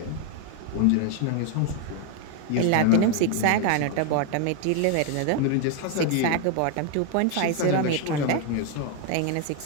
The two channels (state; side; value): different; both; correlation 0.01